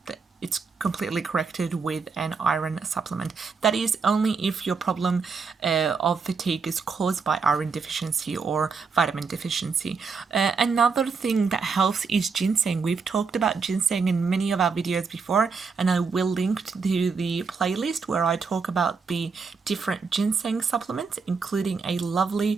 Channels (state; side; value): quieter; left; 5.1 dB